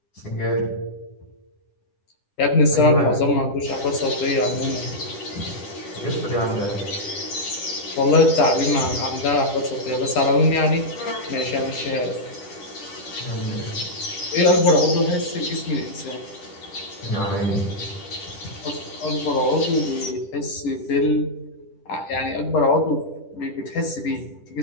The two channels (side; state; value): right; late; 10 ms